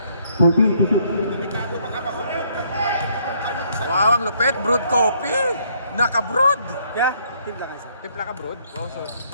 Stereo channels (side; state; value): both; inverted; correlation -0.68